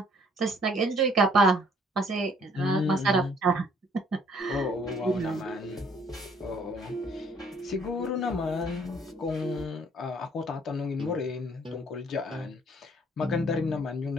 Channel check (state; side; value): normal; both; correlation 0.61